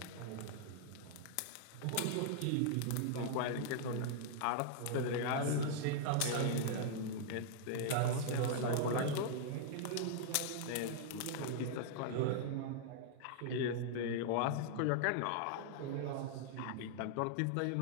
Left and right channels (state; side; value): different; both; correlation -0.01